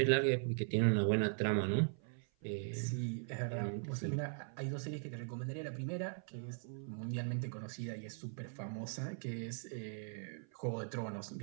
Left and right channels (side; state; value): left; silent; 51 dB below the other